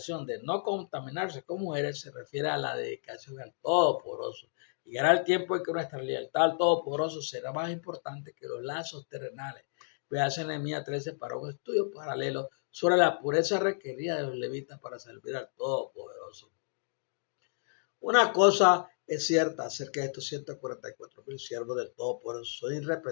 de no contaminarse con mujeres se refiere a la dedicación al Todopoderoso. Llegará el tiempo en que nuestra lealtad al Todopoderoso será más importante que los lazos terrenales. Veas en Nehemías 13 para un estudio paralelo sobre la pureza requerida de los levitas para servir al Todopoderoso. Una cosa es cierta acerca de estos 144,000 siervos del Todopoderoso, son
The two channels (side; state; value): right; silent; digital silence